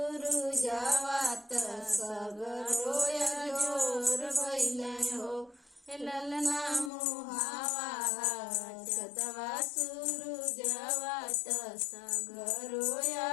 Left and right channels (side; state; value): right; drops out; at 6.9 s